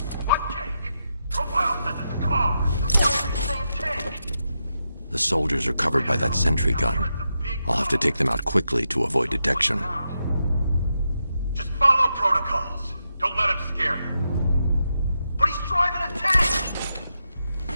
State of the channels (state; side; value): inverted; both; correlation -0.86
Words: The soldiers are covered by that sentry gun. I'll have to take them out quickly to avoid detection. Just follow protocols. Don't let him scare you. But he's driving a tank!